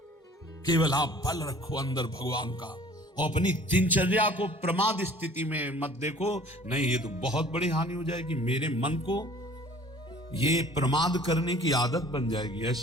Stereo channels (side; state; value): both; normal; correlation 0.50